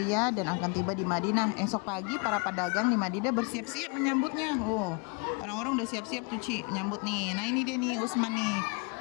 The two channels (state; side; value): quieter; right; 33.1 dB